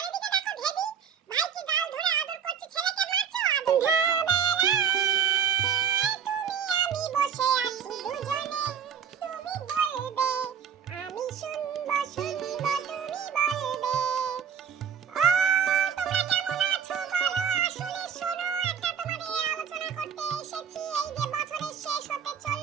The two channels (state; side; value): quieter; left; 7.4 dB